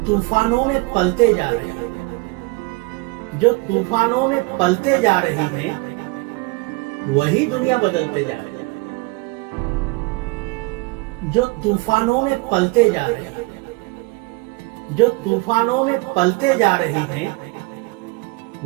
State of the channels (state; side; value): quieter; left; 25.0 dB